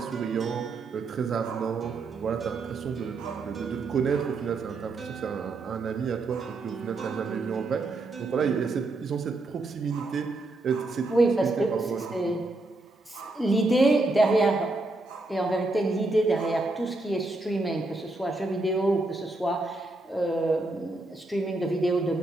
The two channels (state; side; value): quieter; left; 3.1 dB